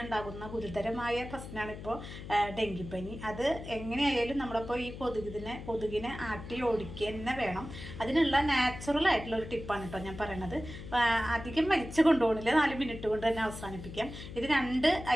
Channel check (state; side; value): noise; left; hum, 11 dB below the sound